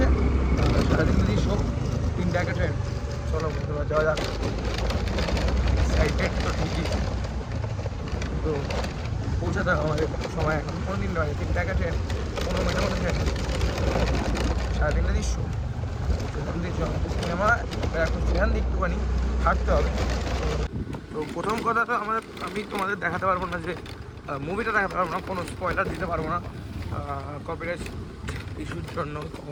সারাদিন যদি সব 3টা একটা ট্রেন। চলো বন্ধুরা যাওয়া যাক। এক্সাইটেড তো ঠিকই, তো পৌঁছাতে হবে আমাদের সময় এখন। কোনো দিন নয়, 3টা একটা ট্রেন, 15 মিনিটের মধ্যে ট্রেন। সারাদিনটা দৃশ্য সিনেমা এখন সেখান দিয়ে একটুখানি হাঁটতে হবে। তো প্রথম কথা তো আমি তোমাদের দেখাতে পারবো না, যে মুভিটা দেখাতে পারবো না, কোনো স্পয়লার দিতে পারবো না কপিরাইট ইস্যুর জন্য।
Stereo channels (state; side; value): identical; both; correlation 1.00